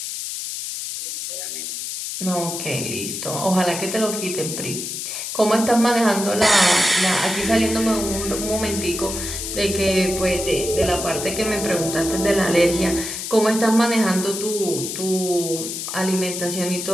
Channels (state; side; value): noise; left; hiss, 5 dB below the sound